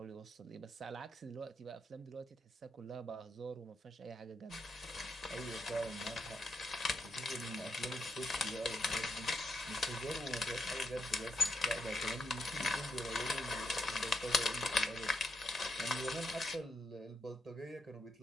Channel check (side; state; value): both; normal; correlation 0.79